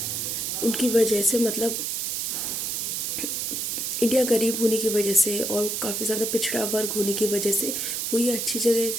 उनकी वजह से, मतलब इंडिया गरीब होने की वजह से और काफ़ी ज़्यादा पिछड़ा वर्ग होने की वजह से वो ये अच्छी जगह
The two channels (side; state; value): right; noise; hiss, 1 dB below the sound